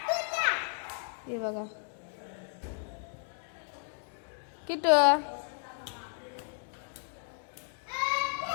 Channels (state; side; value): silent; right; 55 dB below the other